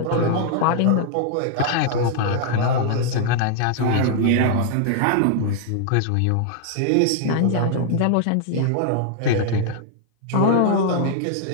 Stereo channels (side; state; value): both; different; correlation -0.01